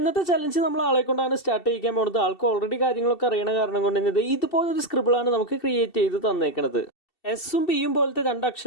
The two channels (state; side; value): late; right; 2.7 ms